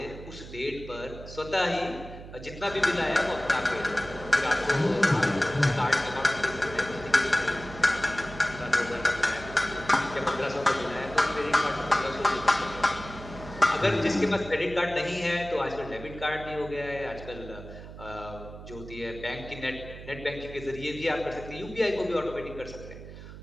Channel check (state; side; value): noise; right; hum, 14 dB below the sound